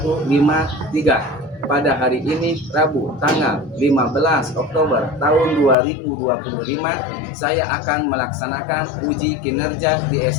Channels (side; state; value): right; drops out; at 5.8 s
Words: Pada hari ini Rabu tanggal 15 Oktober tahun 2025 saya akan melaksanakan uji kinerja di